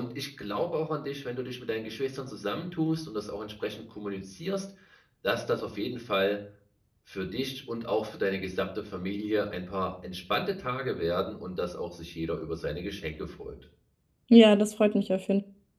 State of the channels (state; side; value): identical; both; correlation 1.00